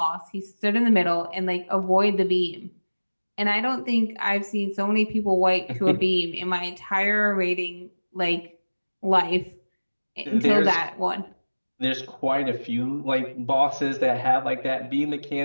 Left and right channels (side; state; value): both; inverted; correlation -1.00